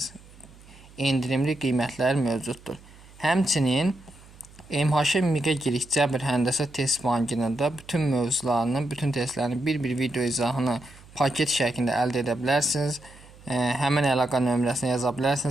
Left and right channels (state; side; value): noise; right; hum, 23 dB below the sound